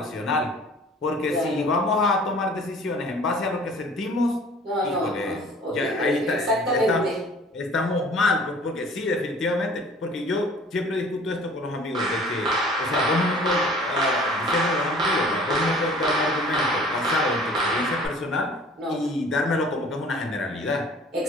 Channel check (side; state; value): both; normal; correlation 0.49